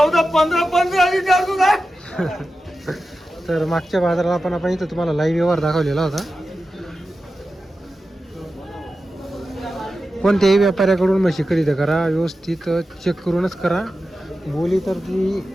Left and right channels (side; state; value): both; normal; correlation 0.92